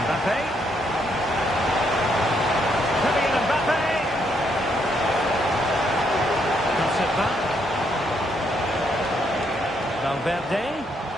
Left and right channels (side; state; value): both; normal; correlation 0.74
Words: Mbappe. Kylian Mbappe. Cuts it back. Valverde.